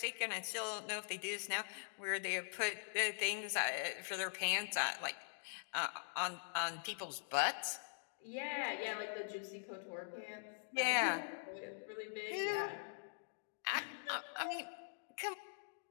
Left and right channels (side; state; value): right; silent; digital silence